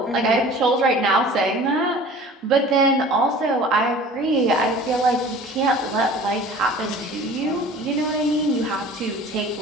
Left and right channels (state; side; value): normal; both; correlation 0.44